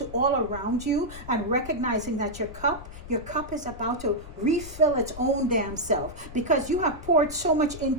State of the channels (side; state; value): left; noise; rumble, 14 dB below the sound